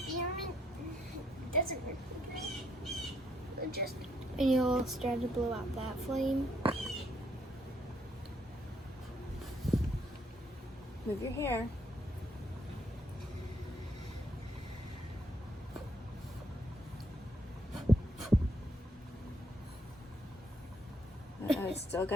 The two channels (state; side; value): normal; both; correlation 0.72